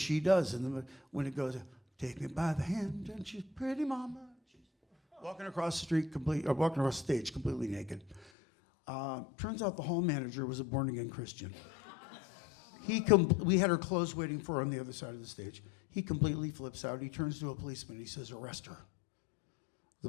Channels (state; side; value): drops out; right; at 8.2 s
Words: does. And when it goes, take me by the hand, and she's pretty mama. She's walking across the street walking across the stage completely naked. Turns out the hall manager was a born-again Christian. We had her clothes waiting for her on the other side of the stage. He completely flips out. He turns to a policeman. He says, arrest her.